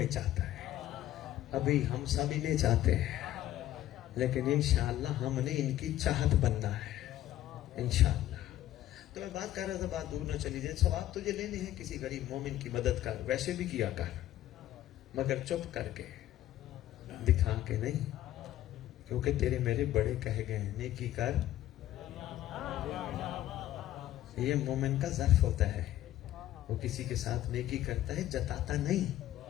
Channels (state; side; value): quieter; right; 13.5 dB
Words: چاہتا ہے. ابھی ہم سب انہیں چاہتے ہیں, لیکن انشاءاللہ ہم نے ان کی چاہت بننا ہے انشاءاللہ. تو میں بات کر رہا تھا, بات دور نہ چلی جائے. ثواب تجھے لینے ہیں کسی غریب مومن کی مدد کر, ویسے بھی کیا کر, مگر چپ کر کے, دکھا کے نہیں, کیونکہ تیرے میرے بڑے کہے گئے ہیں نیکی کر. یہ مومن کا ظرف ہوتا ہے, وہ کسی کے ساتھ نیکی کرتا ہے, جتاتا نہیں,